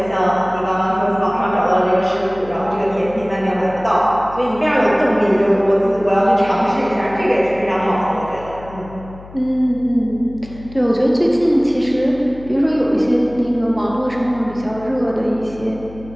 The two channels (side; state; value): left; noise; hum, 18 dB below the sound